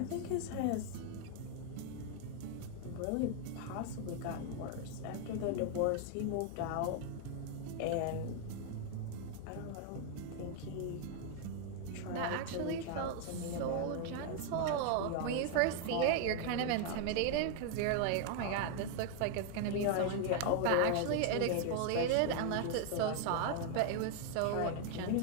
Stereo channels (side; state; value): both; different; correlation 0.00